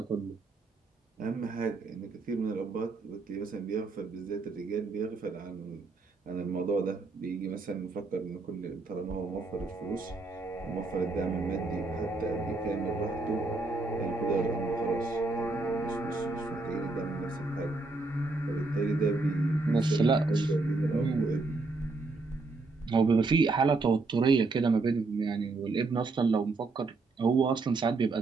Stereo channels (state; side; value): quieter; left; 3.6 dB